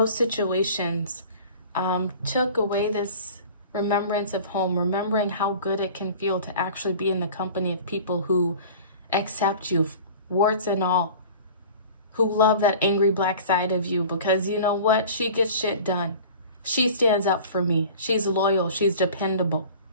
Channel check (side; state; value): both; inverted; correlation -0.42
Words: situations took away this remembrance of home, remembering how good it can feel to actually be in the company of people who accept you, warts and all, who love that angry black side of you because you know what? She gets shit done. She stands up for me. She's loyal. She's dependable.